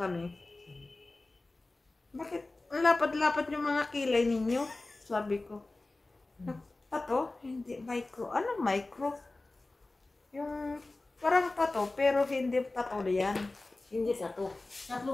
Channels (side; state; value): right; quieter; 3.1 dB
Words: Bakit ang lapad-lapad yung mga kilay ninyo? Sabi ko. Pato? Hindi micro. Ano micro? Yung parang pato, pero hindi pato yan. Hindi sa to.